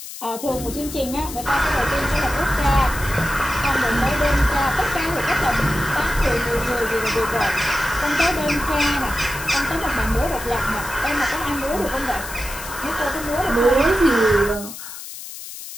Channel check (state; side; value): noise; left; hiss, 11 dB below the sound